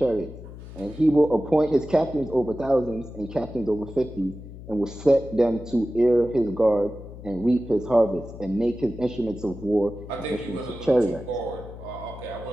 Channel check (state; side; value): noise; left; hum, 14 dB below the sound